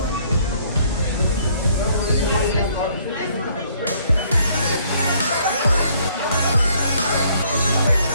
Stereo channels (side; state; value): both; inverted; correlation -0.63